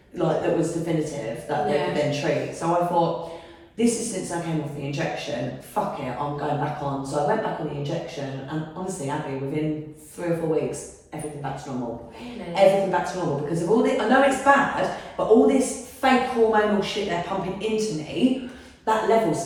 like that was definitive that they could then treat. So I thought, This is since I came off the injection. Fuck it, I'm going back on. So I went back on the injection, and honestly, Abby, within 3 or 4 weeks, everything back to normal. Really? Everything back to normal because of all this. I know it's bad, but all this fake hormonal shit they're pumping into me, that levels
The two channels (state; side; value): identical; both; correlation 1.00